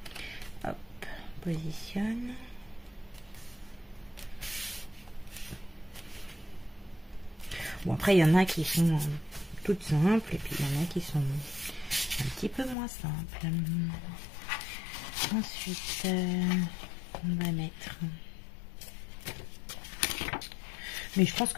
Hop, on positionne. Bon, après, il y en a qui sont toutes simples. Et puis, il y en a qui sont un petit peu moins simples. Ensuite, on va mettre... Mais je pense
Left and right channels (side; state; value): right; drops out; at 12.8 s